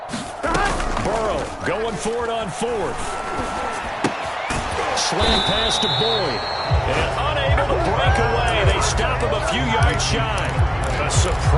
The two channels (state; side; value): identical; both; correlation 1.00